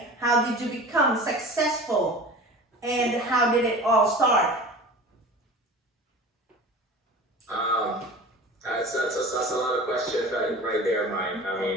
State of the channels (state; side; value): normal; both; correlation 0.37